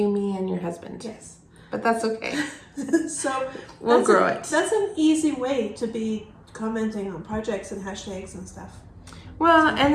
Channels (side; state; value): both; identical; correlation 1.00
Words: me, and your husband. Yes. But that's okay. So we'll grow it. That's an easy way to be commenting on projects and hashtags and stuff. Well, and